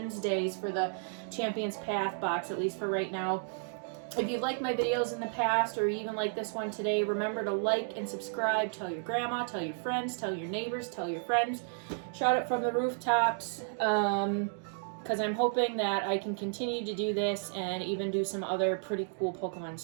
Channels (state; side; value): silent; left; digital silence